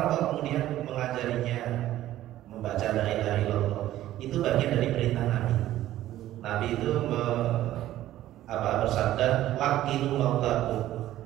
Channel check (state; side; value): quieter; left; 13.8 dB